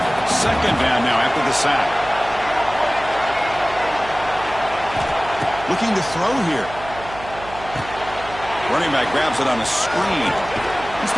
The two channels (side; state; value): right; noise; hum, 15 dB below the sound